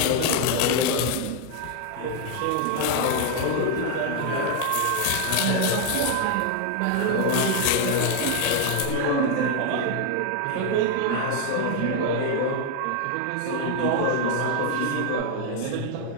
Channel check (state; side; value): different; both; correlation 0.00